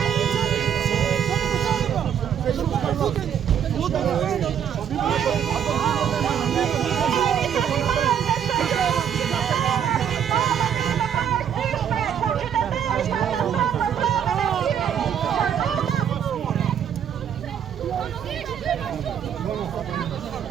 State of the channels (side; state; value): left; quieter; 8.7 dB